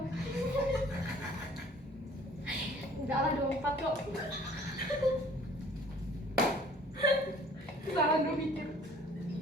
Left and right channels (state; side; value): normal; both; correlation 0.53